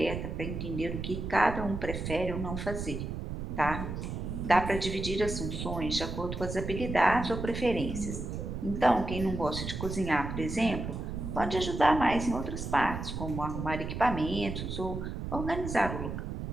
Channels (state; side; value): noise; right; rumble, 5 dB below the sound